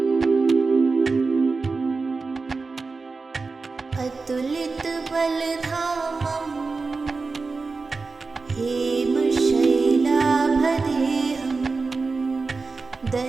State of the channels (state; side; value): quieter; left; 4.1 dB